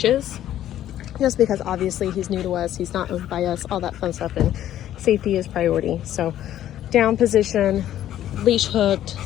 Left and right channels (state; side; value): quieter; right; 12.0 dB